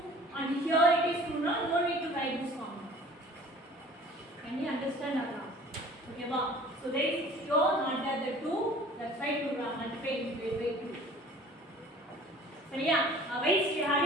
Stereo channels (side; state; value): both; normal; correlation 0.48